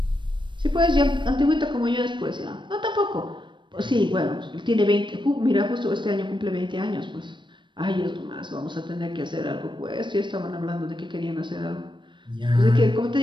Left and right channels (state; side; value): late; left; 0.23 ms